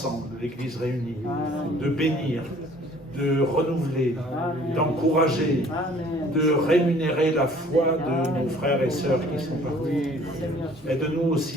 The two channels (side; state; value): both; normal; correlation 0.54